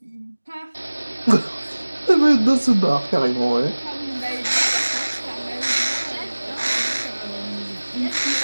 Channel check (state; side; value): inverted; both; correlation -1.00